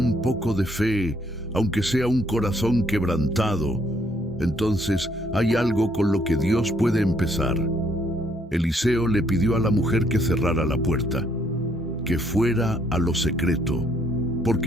poco de fe, aunque sea un corazón quebrantado, entonces hay algo con lo que Dios puede empezar. Eliseo le pidió a la mujer que cerrara la puerta, que fuera a lo secreto,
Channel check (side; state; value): both; normal; correlation 0.68